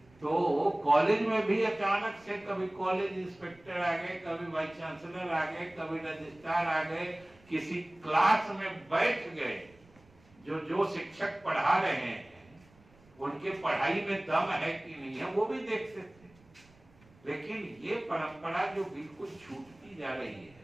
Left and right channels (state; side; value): noise; right; rumble, 28 dB below the sound